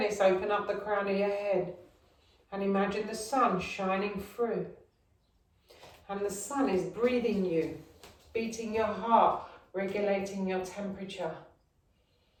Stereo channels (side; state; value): both; identical; correlation 1.00